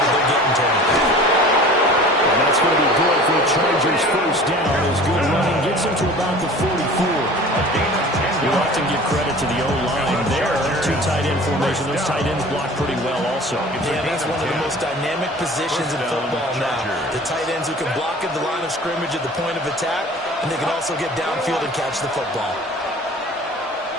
they're getting to him. And that's going to be good for the Chargers first down. His good running gets him to about the 44. You often give credit to the O-line there. Two tight end formation. Those tight ends block pretty well also. Yeah, that's one of the most dynamic positions in football now. The tight ends who can block at the line of scrimmage at the point of attack, and they can also get downfield and catch the football.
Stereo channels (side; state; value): both; normal; correlation 0.43